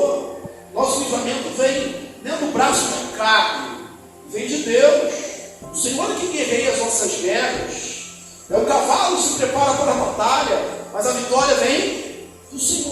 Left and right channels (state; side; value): identical; both; correlation 1.00